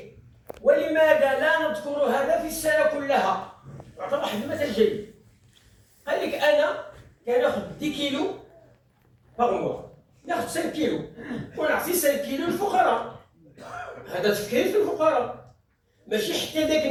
ولماذا لا نذكر هذا في السنه كلها؟ يعطي واحد المثل جيد. قال لك: انا كناخذ 10 كيلو باغ، ناخذ 5 كيلو ونعطي 5 كيلو للفقراء. هذا تفكير في الفقراء، ماشي حتى ذاك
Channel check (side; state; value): both; identical; correlation 1.00